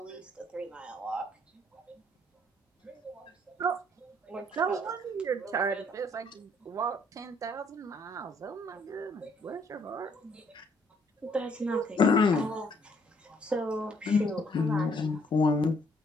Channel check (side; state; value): both; normal; correlation 0.66